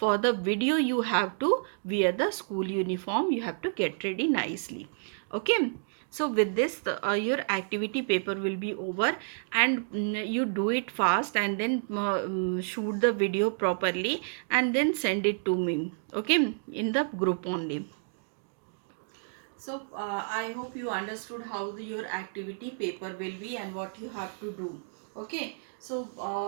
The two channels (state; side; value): silent; left; digital silence